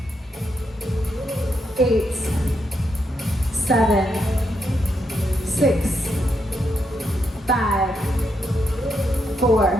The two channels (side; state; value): both; normal; correlation 0.80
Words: 8, 7, 6, 5,